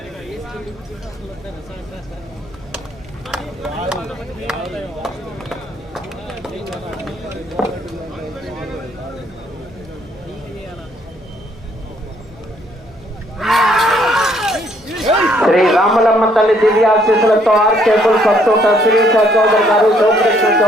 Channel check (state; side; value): normal; both; correlation 0.66